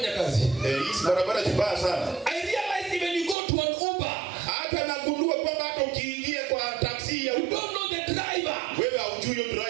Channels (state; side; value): drops out; left; at 3.4 s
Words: kazi. Hizi barabara zibaya sana. I realize even you go to an Uber, Hata nagundua kwamba hata ukiingia kwa taksi ya you Uber, don't know the driver. wewe haujui huyo